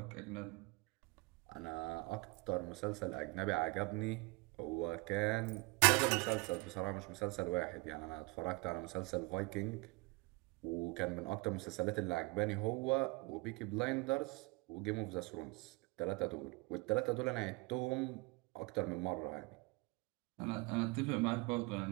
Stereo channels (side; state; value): left; quieter; 25.6 dB